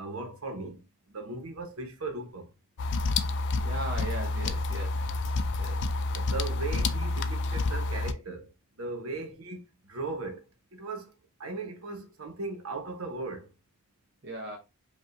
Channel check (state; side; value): normal; both; correlation 0.55